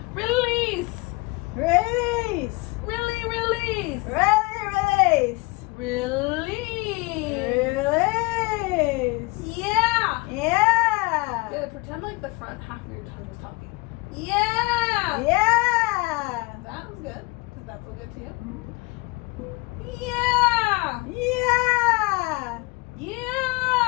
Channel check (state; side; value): quieter; right; 25.0 dB